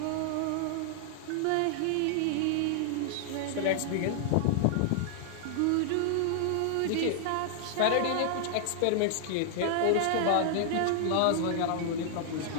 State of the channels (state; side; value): different; both; correlation -0.01